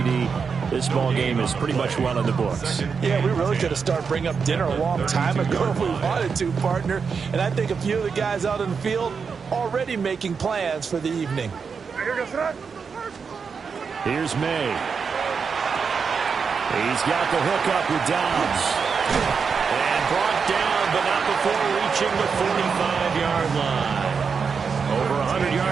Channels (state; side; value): quieter; left; 5.7 dB